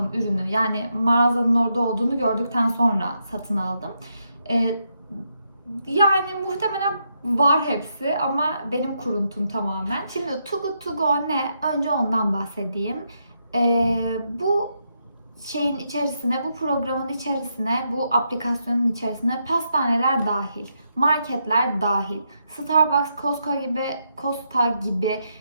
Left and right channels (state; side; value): inverted; both; correlation -0.80